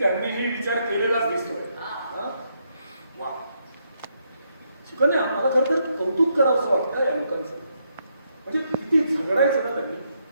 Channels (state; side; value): inverted; both; correlation -0.77